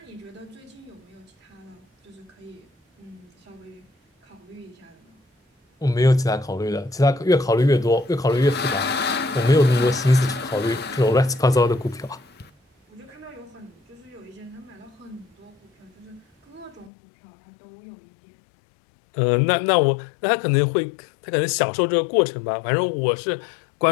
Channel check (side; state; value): right; drops out; at 16.9 s